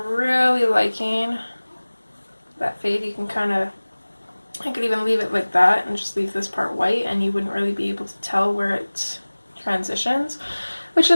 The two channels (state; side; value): inverted; both; correlation -1.00